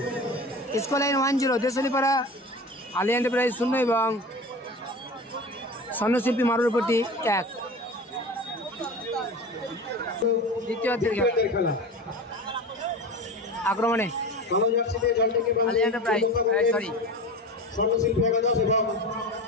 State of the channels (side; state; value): both; normal; correlation 0.32